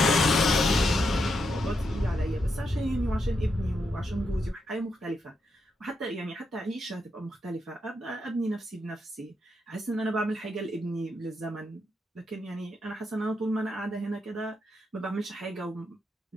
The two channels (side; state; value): both; normal; correlation 0.82